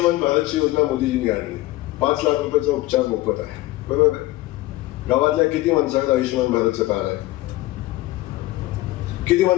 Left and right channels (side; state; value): right; quieter; 18.1 dB